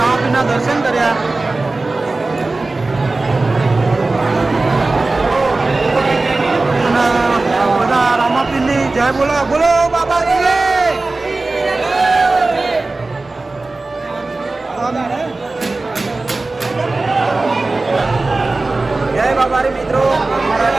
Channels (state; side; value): quieter; left; 3.3 dB